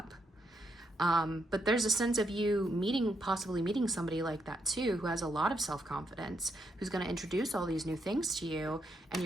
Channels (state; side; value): normal; both; correlation 0.78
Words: But there's a sense of you possibly meeting somebody like that too, who has a lot of self-confidence, who's going to introduce all these new things to you, and